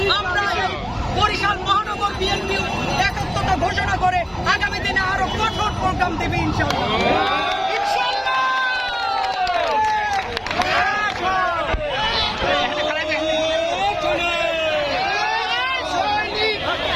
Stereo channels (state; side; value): identical; both; correlation 1.00